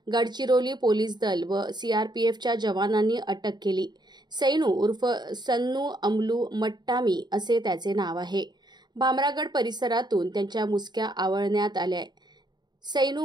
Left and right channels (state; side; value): late; left; 0.21 ms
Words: गडचिरोली पोलीस दल व सीआरपीएफच्या जवानांनी अटक केली। सैनू उर्फ सन्नू अमलू मट्टामी असे त्याचे नाव आहे। भामरागड परिसरातून त्यांच्या मुसक्या आवळण्यात आल्या।